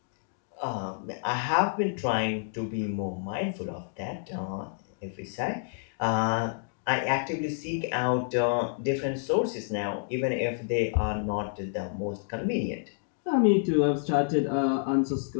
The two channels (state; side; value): silent; right; digital silence